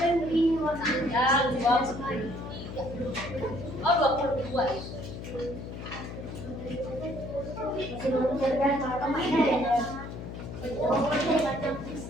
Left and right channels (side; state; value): left; noise; hum, 9 dB below the sound